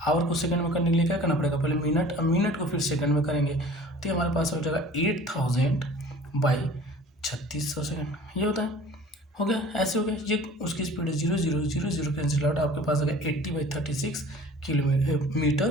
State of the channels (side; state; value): both; normal; correlation 0.46